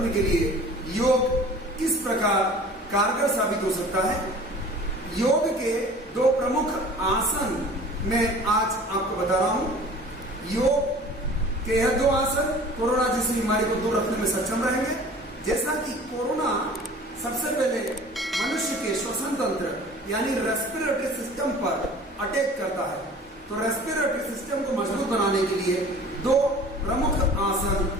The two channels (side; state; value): both; normal; correlation 0.45